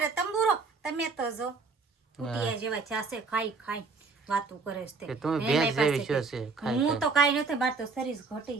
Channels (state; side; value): quieter; left; 4.4 dB